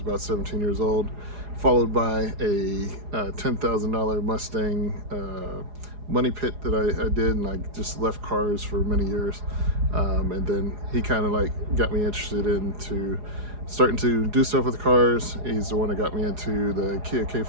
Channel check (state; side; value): late; left; 4.8 ms